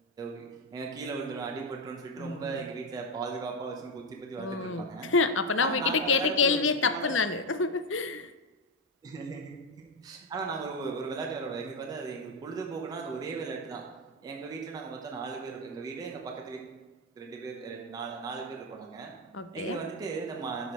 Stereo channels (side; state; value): both; normal; correlation 0.08